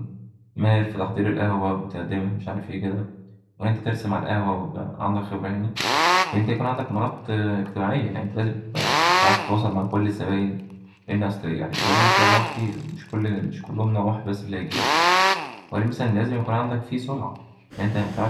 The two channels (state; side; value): identical; both; correlation 1.00